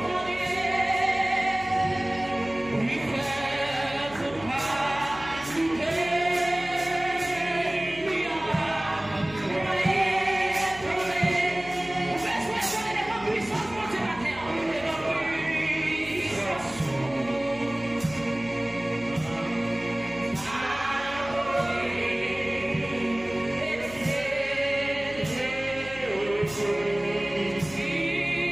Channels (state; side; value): noise; left; hum, 18 dB below the sound